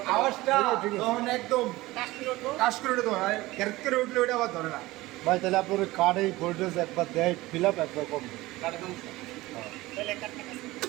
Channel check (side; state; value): left; quieter; 19.0 dB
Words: আওয়াজটা তখন একদম কাজ করে উঠে ধরে ক্যারেক্ট করে উঠলে ওটা আবার ধরে না। ভাই তাহলে আপনার কার্ডে ভোল্টেজ একবার দেয় ফিল আপ একবার কম কাটে সমস্যা